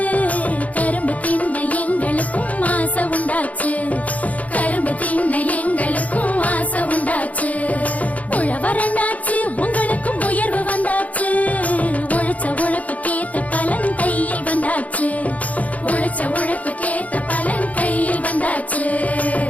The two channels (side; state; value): right; late; 0.071 ms